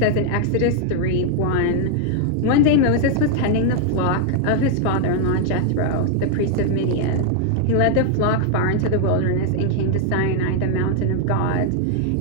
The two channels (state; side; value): different; both; correlation 0.00